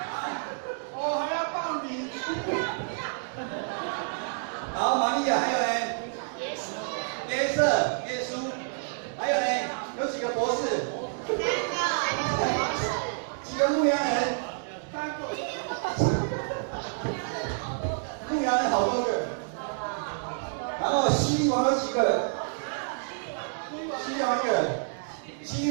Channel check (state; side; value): silent; left; 59 dB below the other